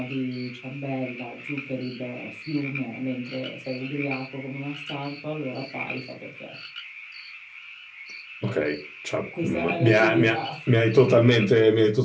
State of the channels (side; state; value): both; identical; correlation 1.00